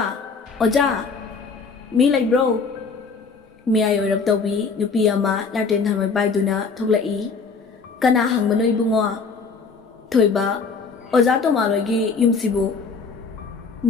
oja mi lai bro mi ayo rap tawbi nupi ama laten thamai baiduna thoklai kana hangmano ibungo thoiba oza to malogi yumsibu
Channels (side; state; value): right; quieter; 4.8 dB